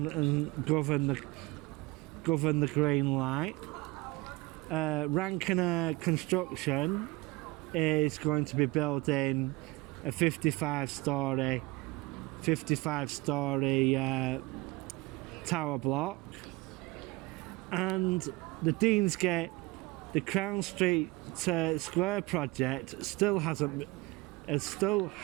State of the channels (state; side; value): quieter; left; 22.8 dB